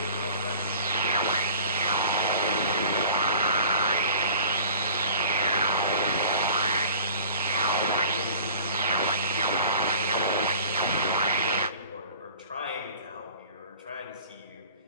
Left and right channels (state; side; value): inverted; both; correlation -0.45